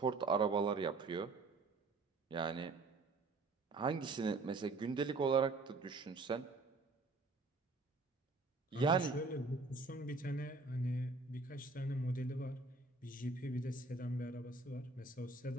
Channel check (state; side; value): quieter; left; 3.5 dB